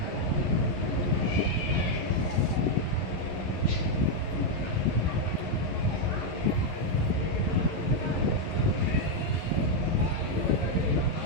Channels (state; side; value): late; right; 11 ms